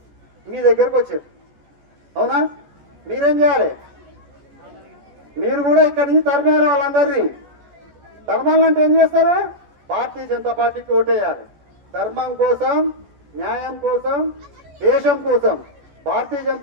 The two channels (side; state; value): left; late; 14 ms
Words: మీ దగ్గరకు వచ్చారు, అవునా? మీరేం చేయాలి? మీరు కూడా ఇక్కడి నుంచి తరిమేయాలి వాళ్ళందరినీ. ధర్మాలంటే ఏం చేస్తారు? భారతీయ జనతా పార్టీకి ఓటేయాలి. ధర్మం కోసం, న్యాయం కోసం, దేశం కోసం భారతీయ